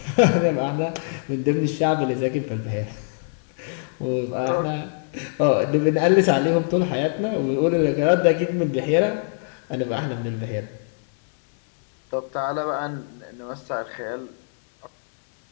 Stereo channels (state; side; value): silent; right; digital silence